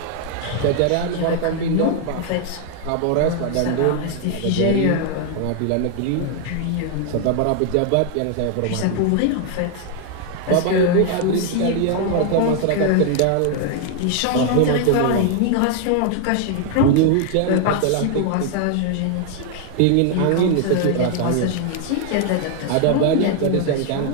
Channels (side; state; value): both; different; correlation 0.00